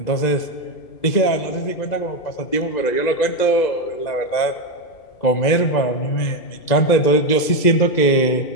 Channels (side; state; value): right; late; 2.0 ms